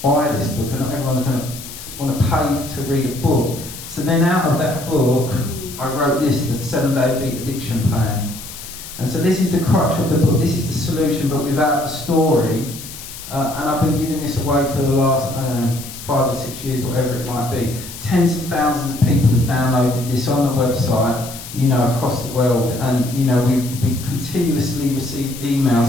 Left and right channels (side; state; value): left; noise; hiss, 13 dB below the sound